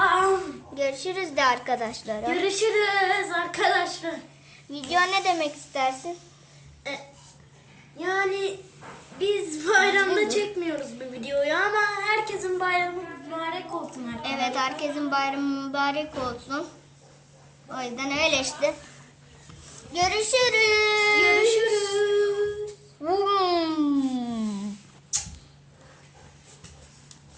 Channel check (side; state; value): both; identical; correlation 1.00